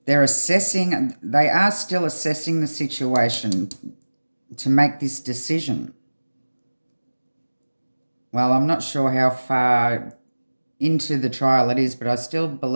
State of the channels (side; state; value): both; inverted; correlation -1.00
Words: They are still assessing the situation to make this decision. Well, I'm not sure how far into the trial it is, but I still